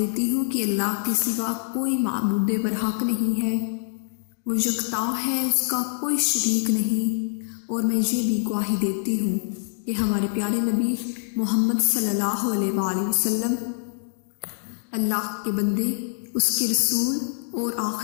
ہوں کہ اللہ کے سوا کوئی معبود برحق نہیں ہے، وہ یکتا ہے، اس کا کوئی شریک نہیں۔ اور میں یہ بھی گواہی دیتی ہوں کہ ہمارے پیارے نبی محمد صلی اللہ علیہ وآلہ وسلم اللہ کے بندے، اس کے رسول اور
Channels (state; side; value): silent; right; digital silence